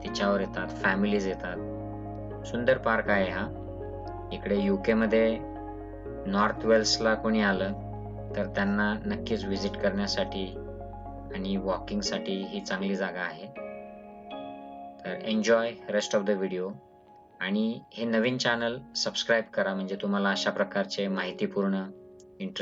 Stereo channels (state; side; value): identical; both; correlation 1.00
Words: तिच्यावर येतात, फॅमिलीज येतात. सुंदर पार्क आहे हा. इकडे यूके मध्ये नॉर्थ वेल्सला कोणी आलं तर त्यांना नक्कीच विजिट करण्यासाठी आणि वॉकिंगसाठी ही चांगली जागा आहे. तर enjoy rest of the video. आणि हे नवीन चॅनल सबस्क्राईब करा, म्हणजे तुम्हाला अशा प्रकारचे माहितीपूर्ण